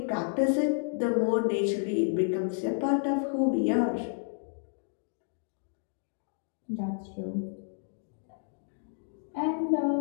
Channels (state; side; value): silent; right; digital silence